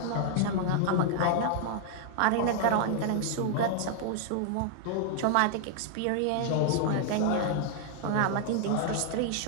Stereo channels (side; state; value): both; different; correlation 0.00